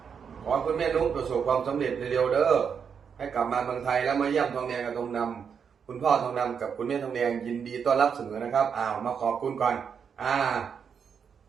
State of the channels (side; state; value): left; quieter; 6.9 dB